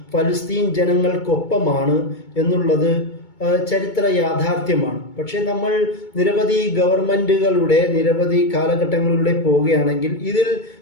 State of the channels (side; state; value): right; late; 2.2 ms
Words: ഫലസ്തീൻ ജനങ്ങൾക്കൊപ്പമാണ് എന്നുള്ളത് ചരിത്ര യാഥാർത്ഥ്യമാണ്. പക്ഷെ നമ്മൾ നിരവധി ഗവൺമെന്റുകളുടെ നിരവധി കാലഘട്ടങ്ങളിലൂടെ പോവുകയാണെങ്കിൽ ഇതിൽ